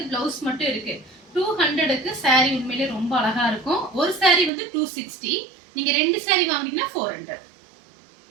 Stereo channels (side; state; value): left; drops out; at 4.5 s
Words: பிளவுஸ் மட்டும் இருக்கு. 200க்கு சாரி உண்மையிலே ரொம்ப அழகா இருக்கும். ஒரு சாரி வந்து 260, நீங்க ரெண்டு சாரி வாங்குனீங்கன்னா 400.